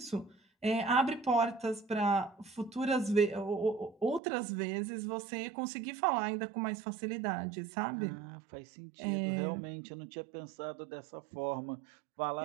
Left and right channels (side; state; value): left; drops out; at 4.2 s